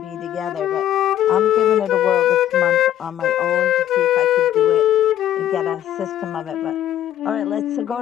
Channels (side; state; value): right; quieter; 11.7 dB